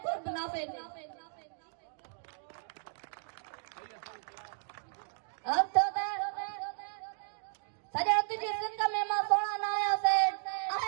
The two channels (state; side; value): silent; left; digital silence